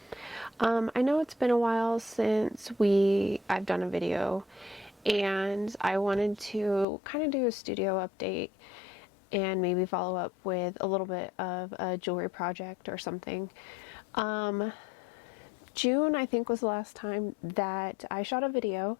I know it's been a while since I've done a video, and I wanted to kind of do a studio update and maybe follow up with a little bit of a jewelry project or something. June, I think, was the last time that I shot a video,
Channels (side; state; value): right; drops out; at 6.9 s